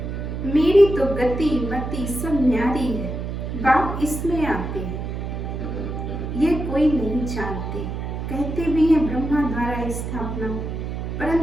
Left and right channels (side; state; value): right; noise; hum, 5 dB below the sound